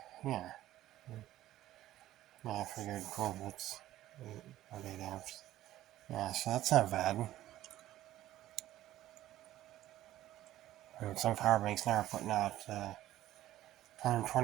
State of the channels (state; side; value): quieter; left; 14.2 dB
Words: yeah. I figured 12 volts, 8 amps. Yeah, so that's not bad. And some power banks now are putting out